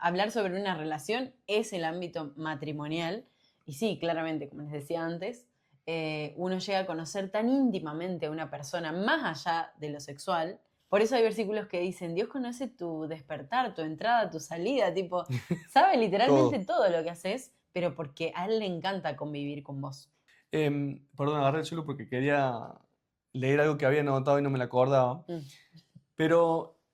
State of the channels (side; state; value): both; identical; correlation 1.00